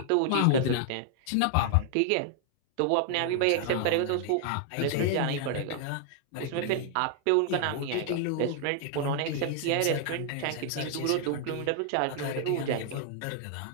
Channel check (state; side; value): different; both; correlation -0.01